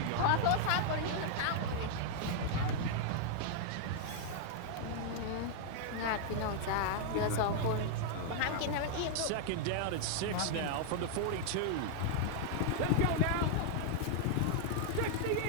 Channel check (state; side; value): different; both; correlation 0.00